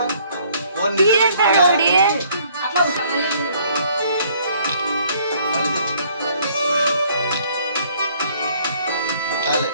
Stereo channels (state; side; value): inverted; both; correlation -0.61